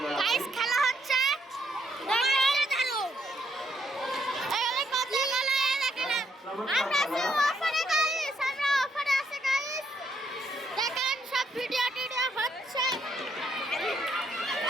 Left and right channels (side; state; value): both; normal; correlation 0.73